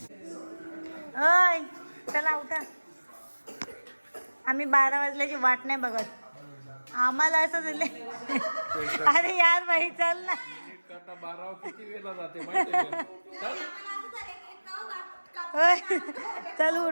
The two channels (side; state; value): both; inverted; correlation -1.00